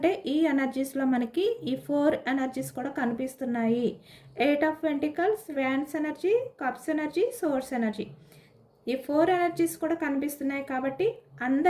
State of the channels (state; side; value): identical; both; correlation 1.00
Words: ఈ ఎనర్జీస్లో మనకి ఈ 4 ఎనర్జీస్ కూడా కనిపిస్తున్నాయి. 8 of pentacles, wands energy, cups energy, source energy ఈ 4 ఎనర్జీస్ కూడా కనిపిస్తున్నాయి. కాబట్టి